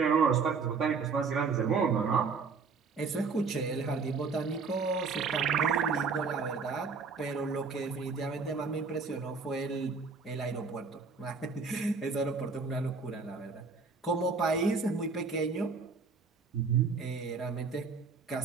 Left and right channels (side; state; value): left; quieter; 4.9 dB